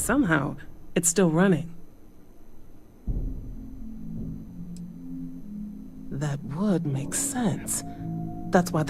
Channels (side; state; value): both; identical; correlation 1.00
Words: it's still running. That would make sense. That's why